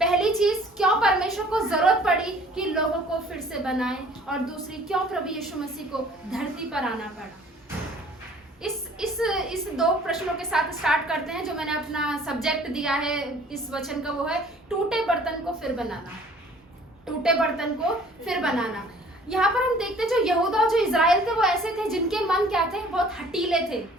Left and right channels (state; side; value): normal; both; correlation 0.53